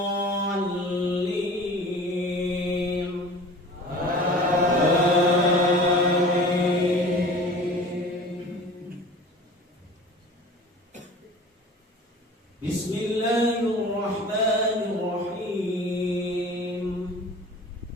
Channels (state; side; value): normal; both; correlation 0.41